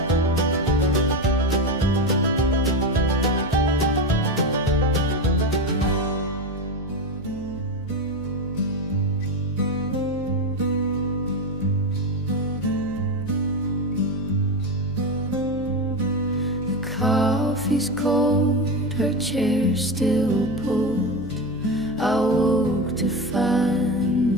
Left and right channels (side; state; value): right; noise; hum, 17 dB below the sound